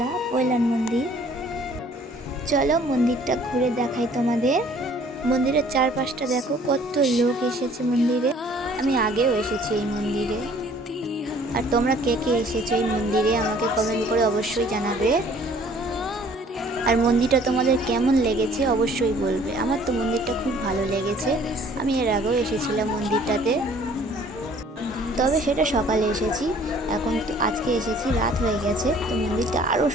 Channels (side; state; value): both; normal; correlation 0.55